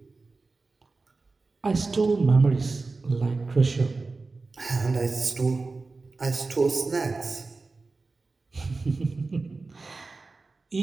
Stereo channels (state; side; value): quieter; left; 3.8 dB